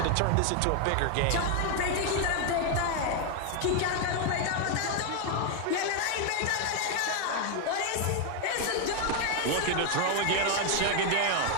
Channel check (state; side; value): different; both; correlation 0.01